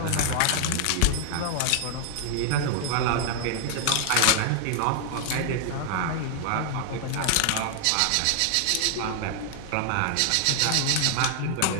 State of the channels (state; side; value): different; both; correlation 0.00